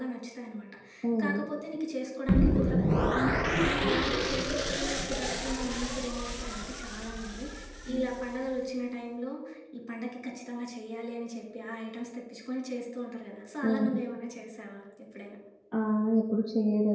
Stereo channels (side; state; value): both; identical; correlation 1.00